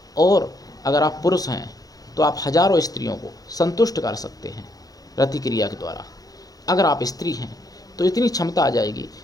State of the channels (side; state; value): right; late; 0.18 ms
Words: और अगर आप पुरुष हैं तो आप हजारों स्त्रियों को संतुष्ट कर सकते हैं रति क्रिया के द्वारा। अगर आप स्त्री हैं तो इतनी क्षमता आ जाएगी